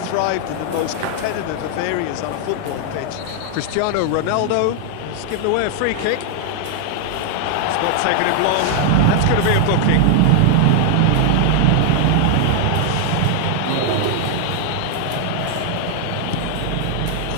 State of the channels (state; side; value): different; both; correlation 0.00